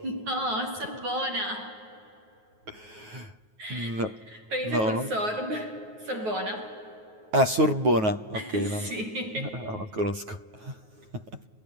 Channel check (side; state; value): left; late; 9.4 ms